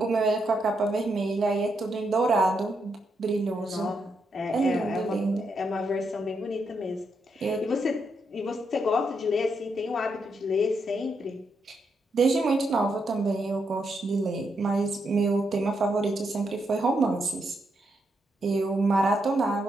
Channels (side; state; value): both; normal; correlation 0.81